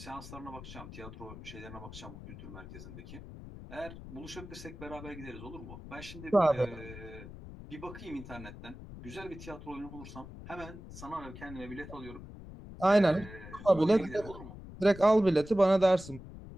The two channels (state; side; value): noise; left; rumble, 13 dB below the sound